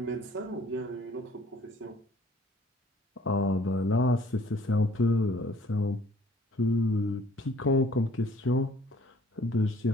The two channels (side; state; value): both; normal; correlation 0.57